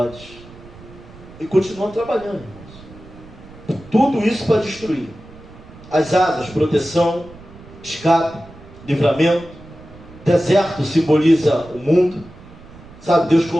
e continuam trabalhando, irmãos. Tudo isso para destruir. As asas, proteção, escape, livramento. Deserto simboliza o mundo. Sabe, Deus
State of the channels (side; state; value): right; noise; rumble, 20 dB below the sound